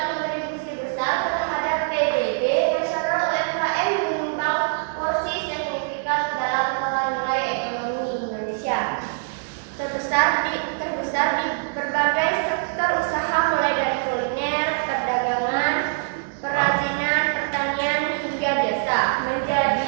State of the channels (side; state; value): left; silent; digital silence